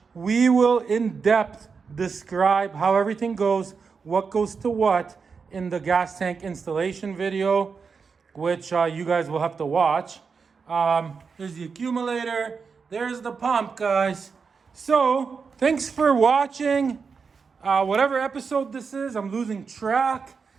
we will in depth describe how everything goes, what goes to what in the gas tank installation video, which you guys will have to watch. There's the accumulator, there's the pump, guys. So, thanks for watching. Whatever episode this is, I'm losing track.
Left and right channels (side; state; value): left; quieter; 5.4 dB